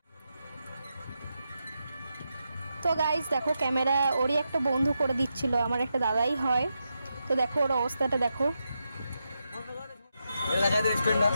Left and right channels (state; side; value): inverted; both; correlation -0.86